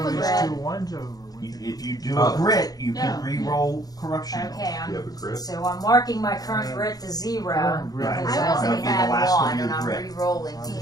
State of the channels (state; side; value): late; right; 0.18 ms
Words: a these red. 2 ones over? If you do a grit, you can No. re-roll corruption. Okay, You have a grit? so I'm marking my current grit to 0 Current because grit. I I only wasn't- had The last one 1 you and I'm grit. re-rolling I'm